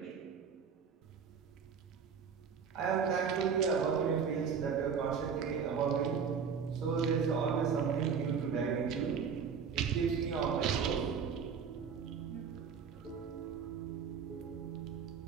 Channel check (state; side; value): quieter; left; 6.5 dB